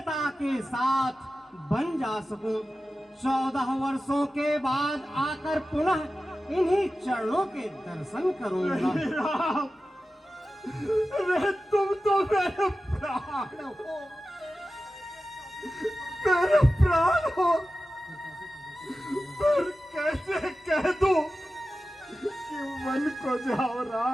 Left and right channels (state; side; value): normal; both; correlation 0.94